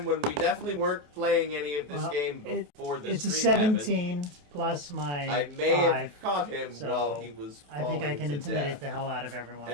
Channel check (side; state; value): left; late; 28 ms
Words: when we definitely weren't playing any of this Well, game before the It's a stream happened, 17 plus my I may 5. have caught him so while he was I think I falling can to intimidate death. the hell out of everyone.